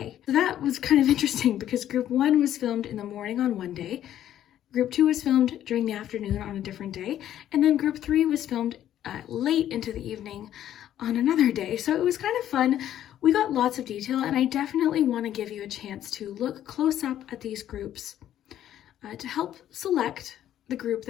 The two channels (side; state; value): right; quieter; 11.5 dB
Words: So that was kind of interesting because group 1 was filmed in the morning on one day. Group 2 was filmed during the afternoon on a different day, and then Group 3 was filmed late into the evening on another day. So it was kind of fun. We got lots of detail, and I definitely want to give you a chance to look close up at these groups to help select the group